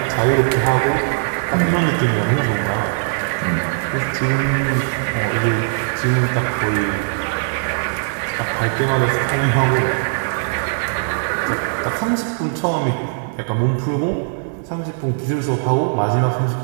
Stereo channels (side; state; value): left; silent; digital silence